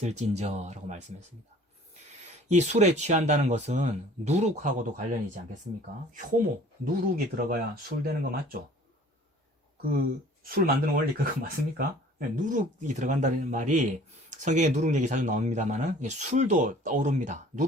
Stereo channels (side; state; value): both; normal; correlation 0.50